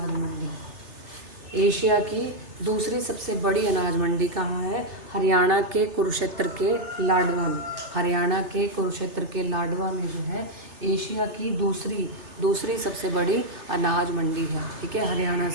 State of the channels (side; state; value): left; late; 3.3 ms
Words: मंडी, एशिया की दूसरी सबसे बड़ी अनाज मंडी कहाँ है? हरियाणा के कुरुक्षेत्र के लाडवा में। हरियाणा के कुरुक्षेत्र के लाडवा में जो है एशिया की दूसरी सबसे बड़ी अनाज मंडी है, ठीक है, हरियाणा